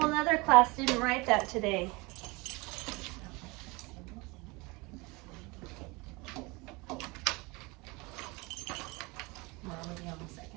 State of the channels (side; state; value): left; quieter; 25.4 dB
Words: in other class didn't write that today.